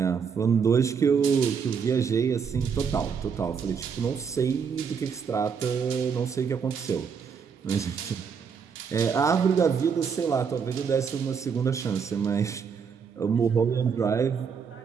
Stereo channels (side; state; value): left; quieter; 6.4 dB